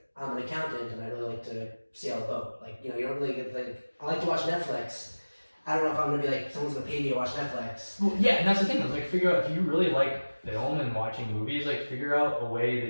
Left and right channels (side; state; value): both; inverted; correlation -1.00